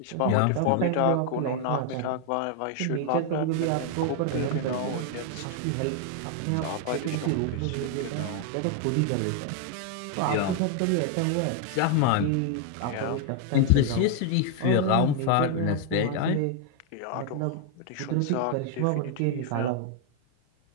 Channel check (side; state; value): both; different; correlation 0.00